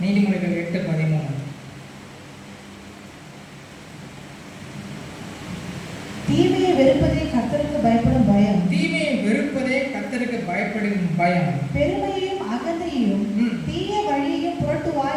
நீதிமொழிகள் 8:13. தீமையை வெறுப்பதே கர்த்தருக்கு பயப்படும் பயம். தீமையை வெறுப்பதே கர்த்தருக்கு பயப்படும் பயம். பெருமையையும் அகந்தையும் தீய வழியையும் புரட்டு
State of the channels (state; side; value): identical; both; correlation 1.00